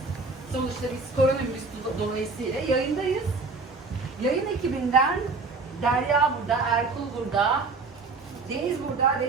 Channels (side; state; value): left; quieter; 4.0 dB